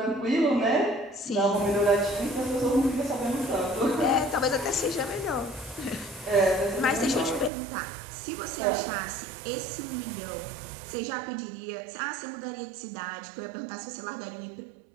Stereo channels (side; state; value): left; drops out; at 7.5 s